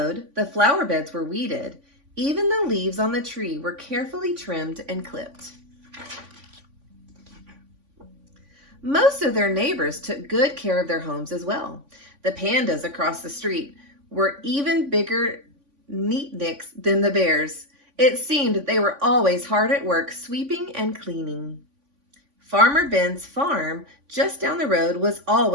the flower beds were weeded, even the leaves on the tree were carefully trimmed and clipped. Most of their neighbors took good care of their homes as well. The pandas across the street were even bigger neatniks than the bears. It seemed they were always hard at work sweeping and cleaning. Farmer Ben's farm just down the road was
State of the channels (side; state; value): left; late; 3.5 ms